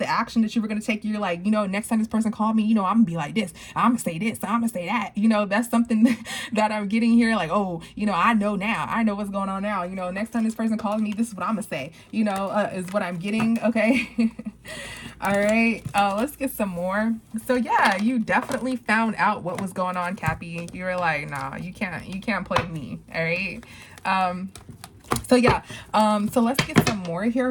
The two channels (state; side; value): identical; both; correlation 1.00